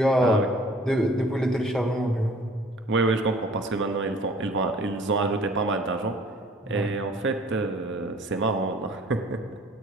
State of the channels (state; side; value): normal; both; correlation 0.52